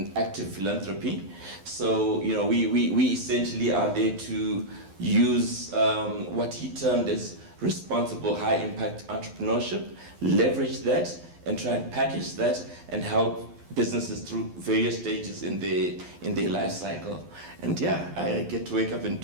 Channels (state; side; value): late; left; 11 ms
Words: active philanthropy. So, we essentially are there to use what he termed as responsible high impact entrepreneurship, leverage that and try and package that and help businesses through various stages in their life cycle. And yeah, I get to wake up and